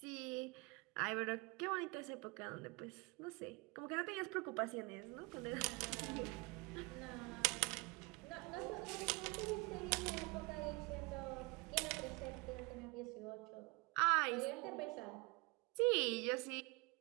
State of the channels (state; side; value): quieter; left; 27.0 dB